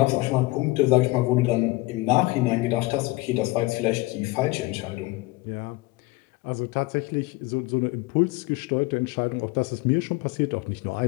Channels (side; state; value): right; quieter; 21.5 dB